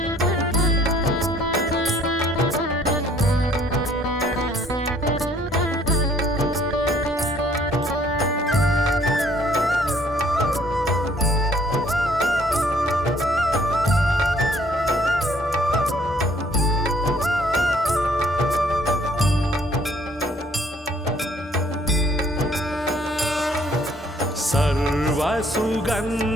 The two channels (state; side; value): normal; both; correlation 0.61